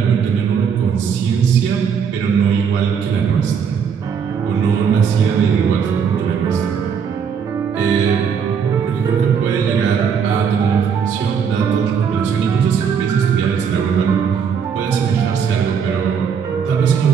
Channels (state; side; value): quieter; left; 6.9 dB